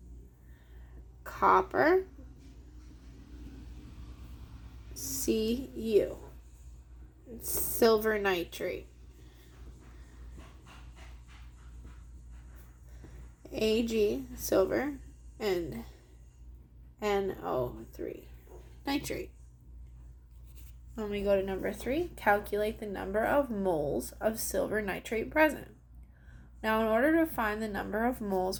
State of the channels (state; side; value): identical; both; correlation 1.00